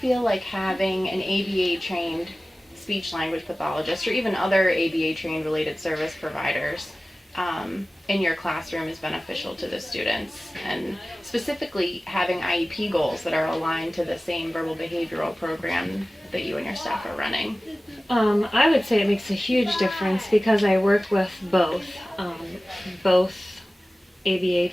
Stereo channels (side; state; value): both; normal; correlation 0.97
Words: like having an ABA trained speech language pathologist or even other ABA trained related service providers in your classroom is beneficial to the students, and specifically having IEP goals that are aligned to the same verbal behavioral program that you and your staff are running? I would say it makes a huge difference because I work with both ABA